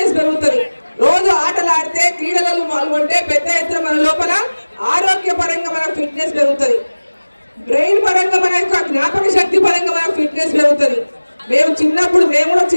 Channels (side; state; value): both; inverted; correlation -1.00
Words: పెరుగుతుంది. రోజు ఆటలు ఆడితే క్రీడలలో పాల్గొంటే పెద్ద ఎత్తున మన లోపల ఆరోగ్య పరంగా మన ఫిట్నెస్ పెరుగుతుంది. బ్రెయిన్ పరంగా మన యొక్క జ్ఞాపక శక్తి పరంగా మన ఫిట్నెస్ పెరుగుతుంది. మేము కూడా